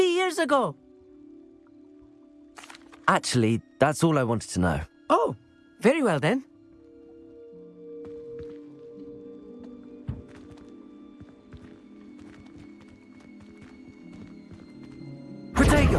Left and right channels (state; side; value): identical; both; correlation 1.00